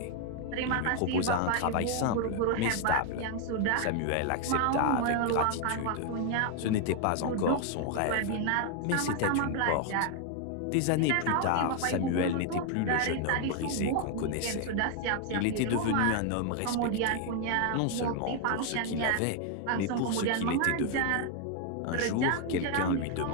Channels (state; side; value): different; both; correlation 0.01